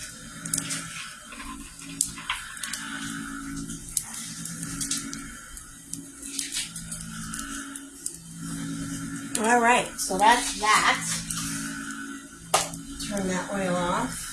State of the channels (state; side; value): identical; both; correlation 1.00